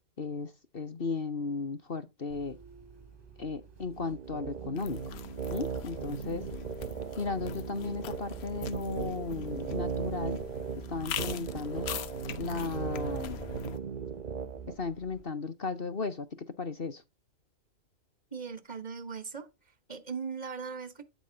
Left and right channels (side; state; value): right; late; 3.0 ms